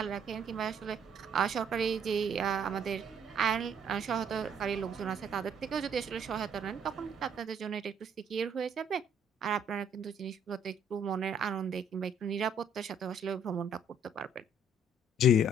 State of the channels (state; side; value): normal; both; correlation 0.64